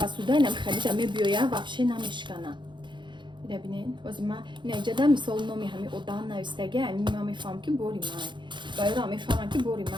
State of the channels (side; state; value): left; late; 0.23 ms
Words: пасудай нам халида мебиёя ваҳше намешкана ида бинед ози ма ина иҷада мисол номи ҳами одам навистаги ами ма мефаҳам ки бори май ва ёра мефаҳмам ки бори